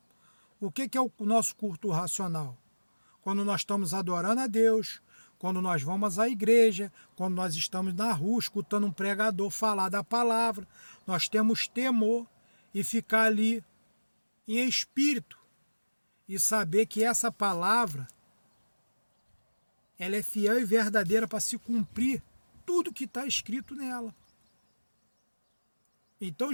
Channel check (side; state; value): both; inverted; correlation -1.00